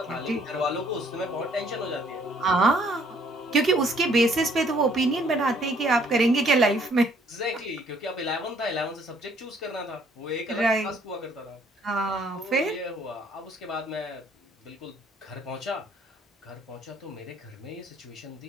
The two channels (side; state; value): both; normal; correlation 0.63